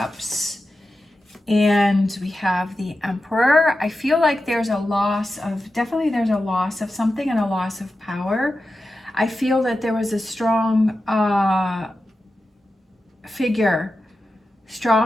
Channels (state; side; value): normal; both; correlation 0.92